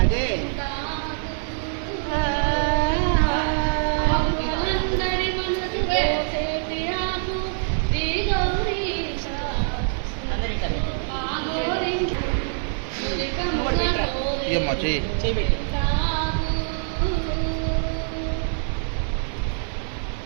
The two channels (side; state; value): left; silent; digital silence